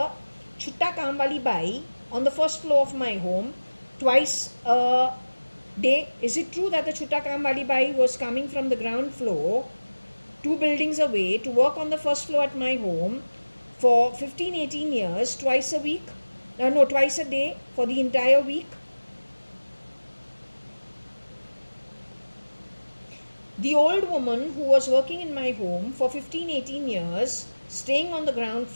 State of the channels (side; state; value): both; inverted; correlation -1.00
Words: Chutta Kamwali Bai on the first floor of my home twice a day. Is it true that the Chutta Kamwali Bai was coming from the ground floor 2 buildings away to work on the first floor at my home for 15-18 years, twice a week? No, twice a day for the entire week? The old woman who was working in my home for 15-18 years, staying on the ground